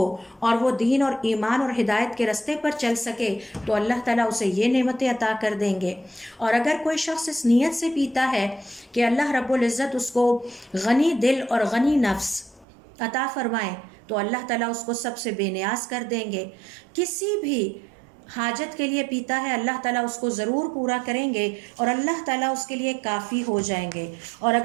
اور وہ دین اور ایمان اور ہدایت کے راستے پر چل سکے تو اللہ تعالیٰ اسے یہ نعمتیں عطا کر دیں گے۔ اور اگر کوئی شخص اس نیت سے پیتا ہے کہ اللہ رب العزت اس کو غنی دل اور غنی نفس عطا فرمائے تو اللہ تعالیٰ اس کو سب سے بے نیاز کر دیں گے۔ کسی بھی حاجت کے لیے پیتا ہے اللہ تعالیٰ اس کو ضرور پورا کریں گے اور اللہ تعالیٰ اس کے لیے کافی ہو جائیں گے۔ اور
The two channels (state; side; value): drops out; left; at 12.7 s